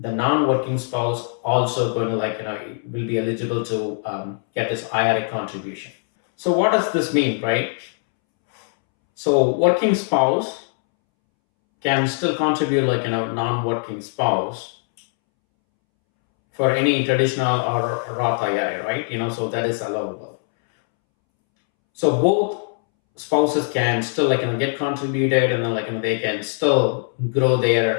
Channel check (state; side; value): silent; right; 65 dB below the other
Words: non-working spouse also going to will be eligible to get this IRA contribution. So what does this mean, right? So working spouse can still contribute non-working spouse for any traditional or Roth IRA, right? So that is allowable. So both spouses can still get contributed, and then they can still grow